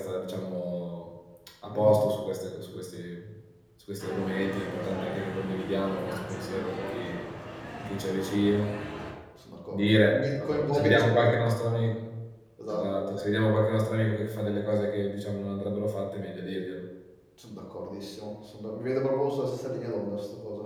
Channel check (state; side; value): identical; both; correlation 1.00